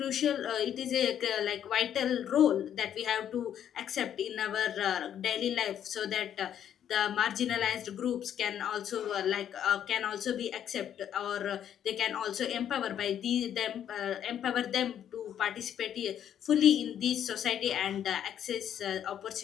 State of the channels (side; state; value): right; quieter; 9.8 dB